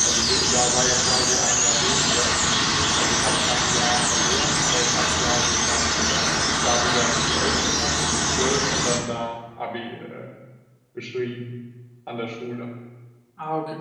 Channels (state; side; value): identical; both; correlation 1.00